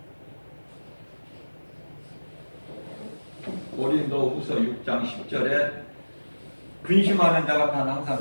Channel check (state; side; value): inverted; both; correlation -1.00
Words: 고린도후서 6장 10절에 근심하는 자 같아는 항상